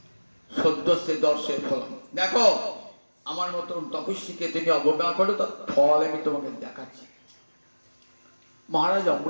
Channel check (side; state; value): both; inverted; correlation -1.00